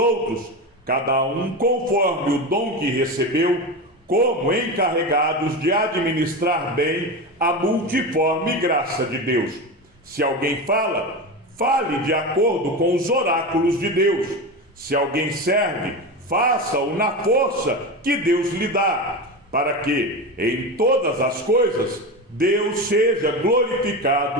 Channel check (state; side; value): normal; both; correlation 0.21